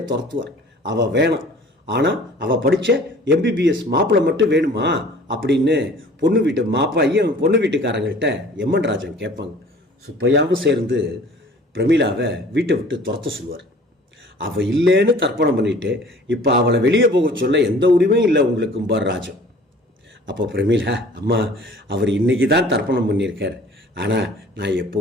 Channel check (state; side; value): normal; both; correlation 0.49